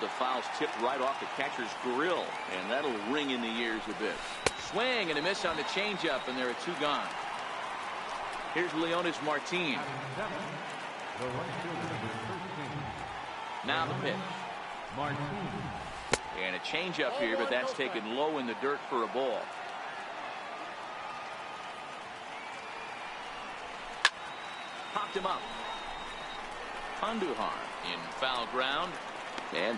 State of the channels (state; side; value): identical; both; correlation 1.00